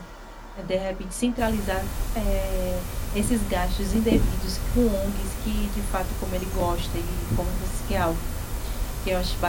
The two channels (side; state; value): both; identical; correlation 1.00